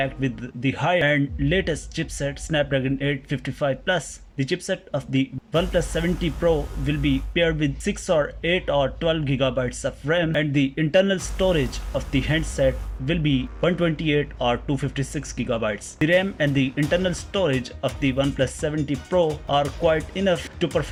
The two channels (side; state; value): both; identical; correlation 1.00